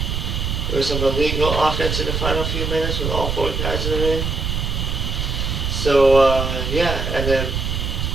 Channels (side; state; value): right; noise; rumble, 1 dB below the sound